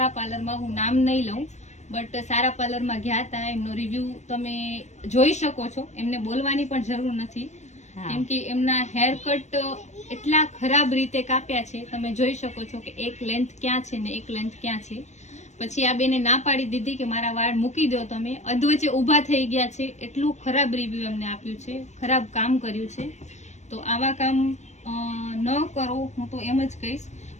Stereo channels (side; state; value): right; late; 0.34 ms